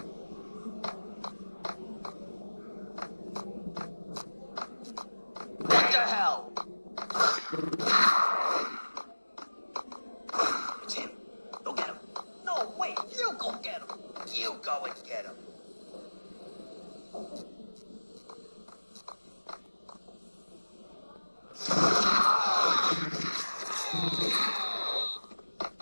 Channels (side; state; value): both; inverted; correlation -1.00